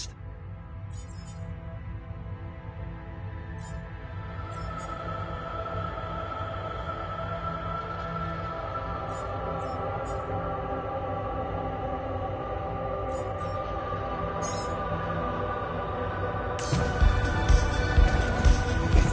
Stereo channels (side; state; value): both; identical; correlation 1.00